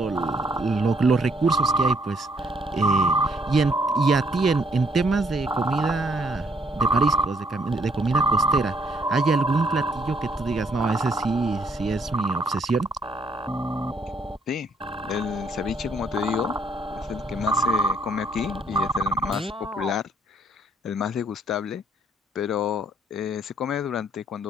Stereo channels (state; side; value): normal; both; correlation 0.67